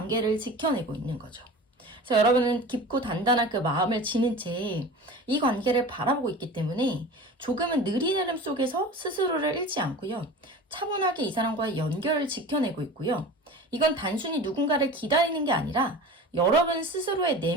지켜내고 있는 거죠. 그래서 여러분은 깊고 단단한 그 마음을 지닌 채 이 관계를 바라보고 있기 때문에 조금은 느린 흐름 속에서 스스로를 잃지 않고요. 차분하게 이 사람과의 연결을 지켜내고 있고요. 이건 단순히 누군가를 기다리는 게 아니라 여러분 스스로의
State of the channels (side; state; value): both; normal; correlation 0.36